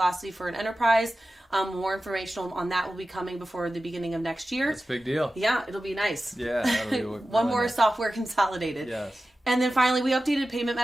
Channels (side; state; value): both; normal; correlation 0.94